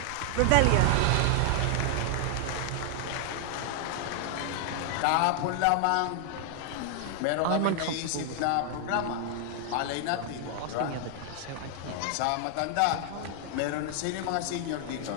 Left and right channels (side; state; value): both; different; correlation 0.00